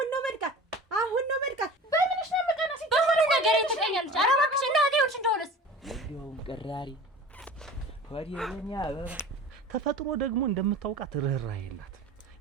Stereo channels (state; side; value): normal; both; correlation 0.39